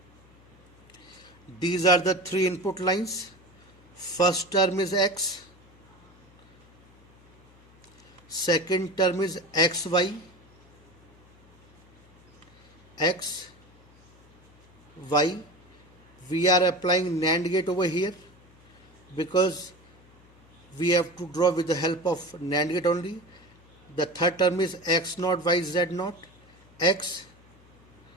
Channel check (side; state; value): left; noise; hum, 27 dB below the sound